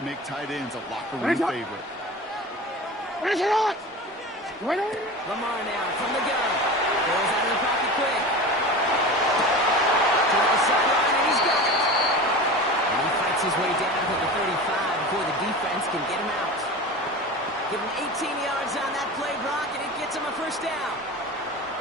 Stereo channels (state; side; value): normal; both; correlation 0.32